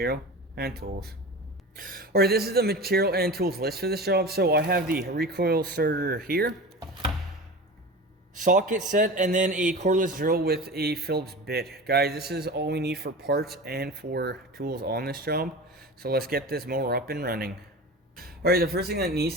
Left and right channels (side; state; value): both; normal; correlation 0.32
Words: and tools. Alright, this is the material and tools list for this job. So I have the recoil starter here, socket set, and then a cordless drill with a Phillips bit. Guys, this is all we need for parts and for tools on this job. So let's get this mower up and running. Alright, the first thing that